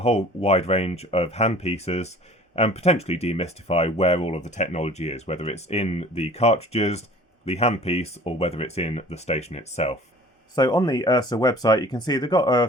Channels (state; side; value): normal; both; correlation 0.47